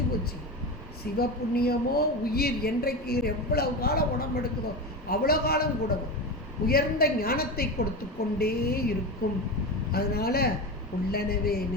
போச்சு. சிவபுண்ணியமோ உயிர் என்றைக்கு எவ்வளவு காலம் உடம்பு எடுக்குதோ அவ்வளோ காலம் கூட உயர்ந்த ஞானத்தை கொடுத்து கொண்டே இருக்கும். அதனால் உள்ளனவே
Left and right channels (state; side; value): normal; both; correlation 0.22